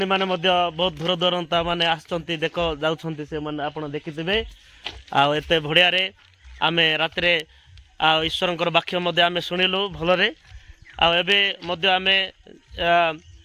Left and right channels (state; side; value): identical; both; correlation 1.00